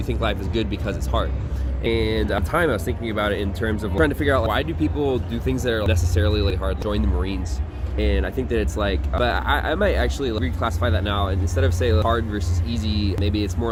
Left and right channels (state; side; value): identical; both; correlation 1.00